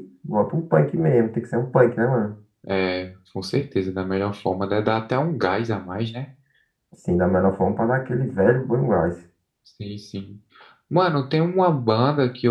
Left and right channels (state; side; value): identical; both; correlation 1.00